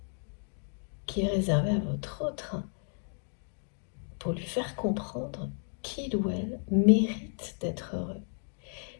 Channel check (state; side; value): silent; right; 56 dB below the other